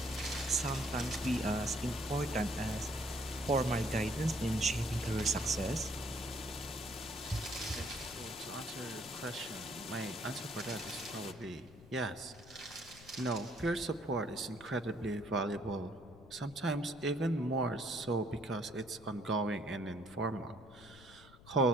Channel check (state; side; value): noise; left; rumble, 20 dB below the sound